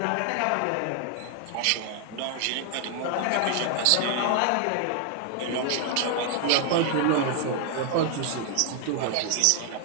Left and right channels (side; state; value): both; different; correlation 0.00